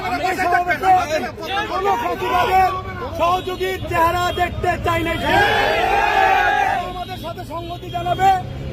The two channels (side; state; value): both; identical; correlation 1.00